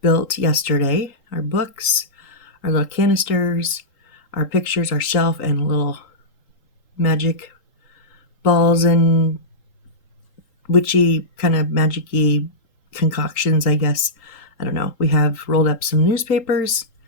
built yesterday. Our books, our little canisters, our pictures, our shelf, and little magic balls and witchy kind of magic-y concoctions, I guess. I don't know. We have rolled up some newspapers.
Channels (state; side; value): late; right; 3.8 ms